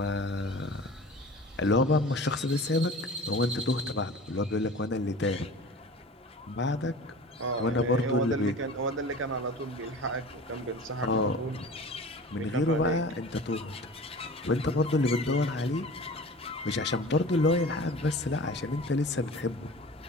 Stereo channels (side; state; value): both; normal; correlation 0.39